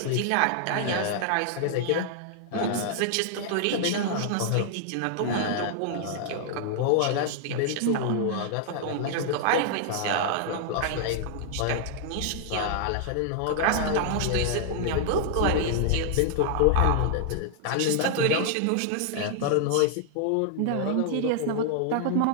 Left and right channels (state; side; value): different; both; correlation 0.00